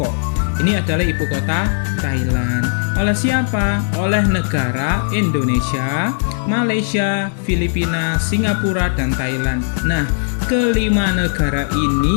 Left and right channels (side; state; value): right; silent; digital silence